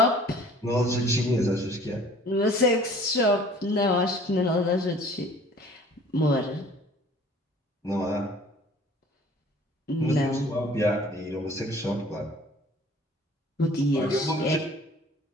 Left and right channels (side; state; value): both; normal; correlation 0.51